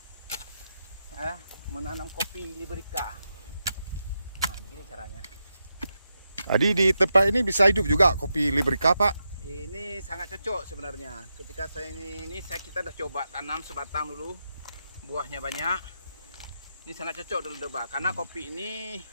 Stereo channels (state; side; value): inverted; both; correlation -0.86